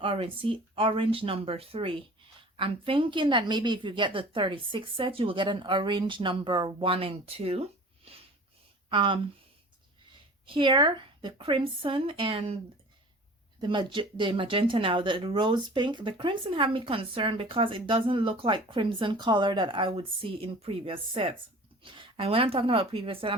orange. See, orange number 3. I'm thinking that maybe if you get the 36 set, you will get an orange number 1 and 2. Here, the crimson and the magenta, now the rose pink. The crimson have me concerned because it doesn't look like crimson color that I would see in previous sets. And when I'm talking about previous set,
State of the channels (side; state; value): both; normal; correlation 0.43